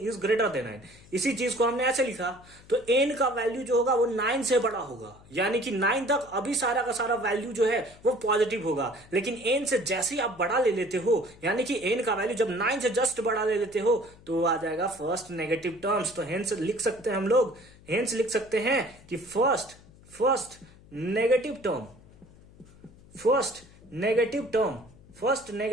ग्रेटर देन 9। इसी चीज को हमने ऐसे लिखा तो n का वैल्यू जो होगा वो 9 से बड़ा होगा, यानी कि 9 तक अभी सारा का सारा वैल्यू जो है वो पॉजिटिव होगा, लेकिन n से जैसे ही आप बड़ा ले लेते हो, यानी कि n का वैल्यू जब 9 से जस्ट बड़ा ले लेते हो तो आ जाएगा फर्स्ट नेगेटिव टर्म्स। तो हेंस लिख सकते हैं हम लोग, लिख सकते हैं कि फर्स्ट नेगेटिव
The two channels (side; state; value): left; noise; hum, 24 dB below the sound